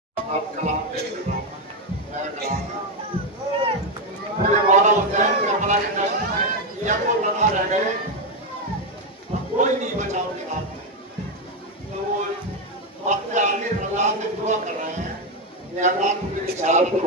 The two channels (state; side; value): normal; both; correlation 0.07